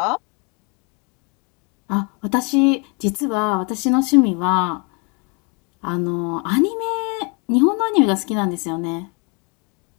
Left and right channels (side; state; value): right; quieter; 33.3 dB